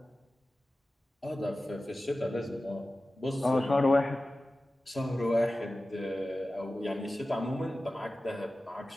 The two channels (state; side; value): normal; both; correlation 0.95